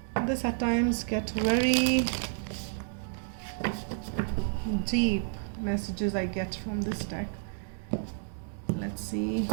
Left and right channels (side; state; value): left; silent; digital silence